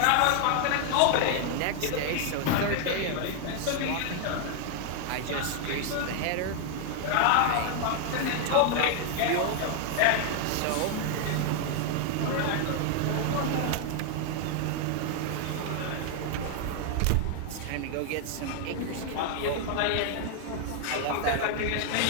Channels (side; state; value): both; different; correlation 0.00